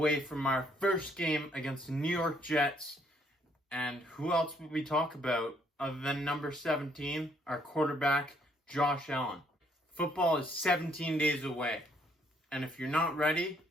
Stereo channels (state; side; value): normal; both; correlation 0.68